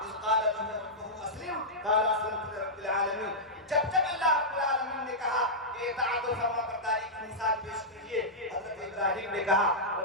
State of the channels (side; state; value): both; normal; correlation -0.11